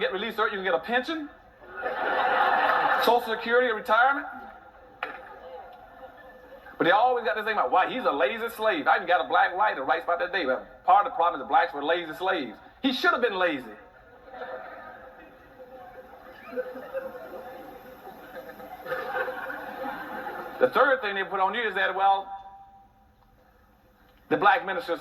get released early? You can get a pension? Social Security or retirement? But they always got this thing about why he's a lazy slave. I even got a black writer who writes about that day. Part of the problem is the blacks were lazy slaves. He should have been lazy. The third thing they put on you is that, well, the black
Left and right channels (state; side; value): identical; both; correlation 1.00